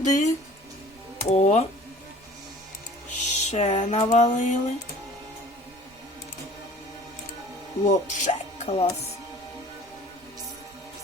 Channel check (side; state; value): right; noise; rumble, 28 dB below the sound